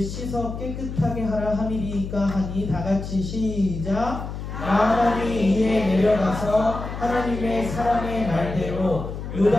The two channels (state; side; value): noise; left; hum, 7 dB below the sound